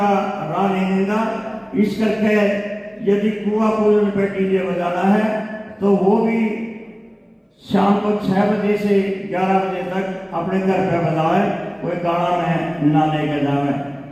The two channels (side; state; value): both; identical; correlation 1.00